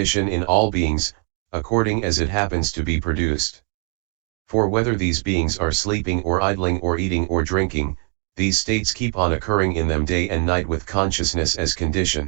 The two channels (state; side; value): quieter; left; 39.4 dB